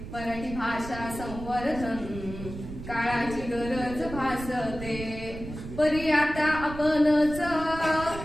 मराठी भाषा संवर्धन काळाची गरज भासते. परी आता आपणच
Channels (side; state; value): right; noise; rumble, 11 dB below the sound